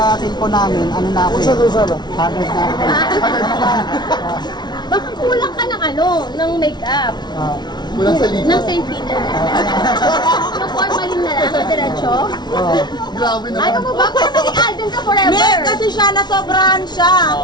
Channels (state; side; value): late; right; 0.20 ms